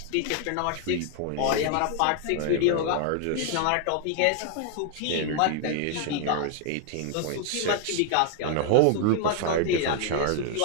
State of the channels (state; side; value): different; both; correlation 0.00